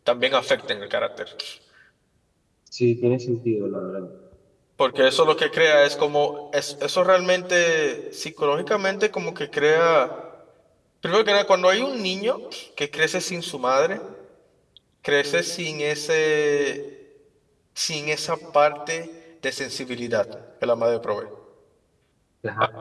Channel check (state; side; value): identical; both; correlation 1.00